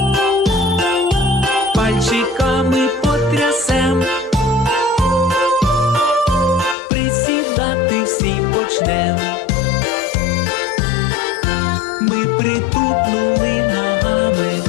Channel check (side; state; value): right; drops out; at 6.8 s